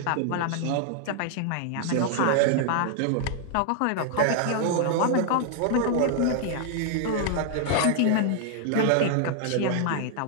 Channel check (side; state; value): both; different; correlation 0.00